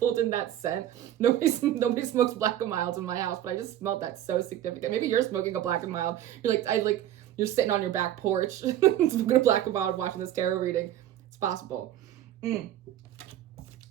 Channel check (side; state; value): left; quieter; 12.1 dB